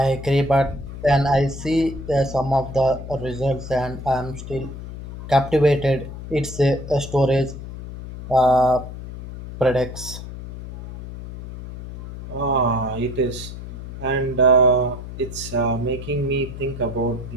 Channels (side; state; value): left; noise; hum, 11 dB below the sound